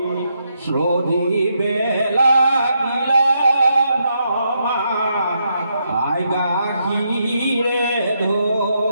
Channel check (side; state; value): both; inverted; correlation -0.80